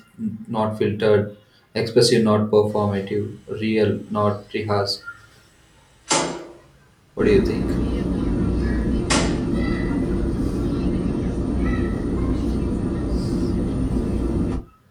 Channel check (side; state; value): both; identical; correlation 1.00